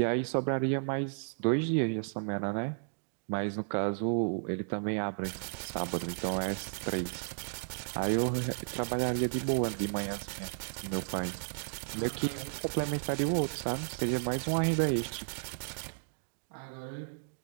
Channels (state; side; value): silent; left; digital silence